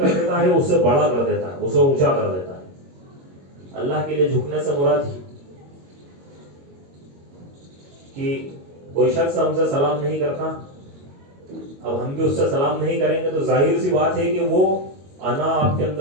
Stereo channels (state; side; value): late; left; 22 ms